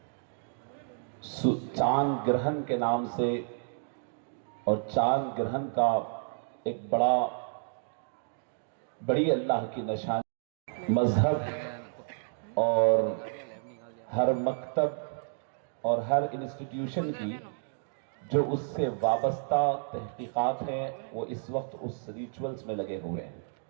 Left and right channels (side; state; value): left; silent; digital silence